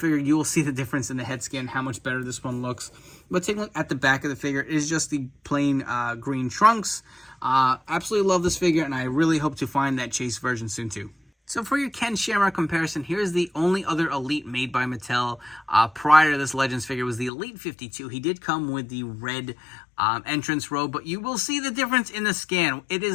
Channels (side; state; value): right; drops out; at 17.3 s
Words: you will see the difference in the head scan, how much better this one looks. But taking a look at the back of the figure, it is just the plain green trunks. Absolutely love this figure, and I really hope to find that chase version soon too. So for your Ken Shamrock comparison, here's the only other Elite made by Mattel prior to this Legends figure was the Elite 52. He did come with the red entrance robe, but you will see the difference in the scan. It